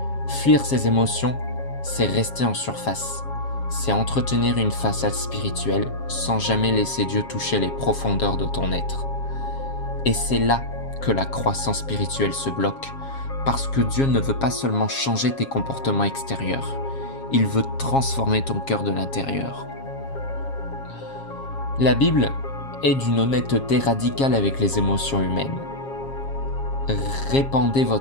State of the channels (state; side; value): late; right; 7.4 ms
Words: Fuir ces émotions, c'est rester en surface. C'est entretenir une façade spirituelle sans jamais laisser Dieu toucher les profondeurs de ton être. Et c'est là que la croissance spirituelle se bloque, parce que Dieu ne veut pas seulement changer tes comportements extérieurs, il veut transformer ton cœur de l'intérieur. La Bible est d'une honnêteté radicale avec les émotions humaines. Répandez